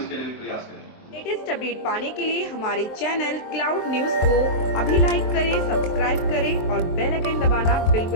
लिए भी प्रयास करेंगे। लेटेस्ट अपडेट पाने के लिए हमारे चैनल क्लाउड न्यूज को अभी लाइक करें, सब्सक्राइब करें और बेल आइकन दबाना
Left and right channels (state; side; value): late; right; 23 ms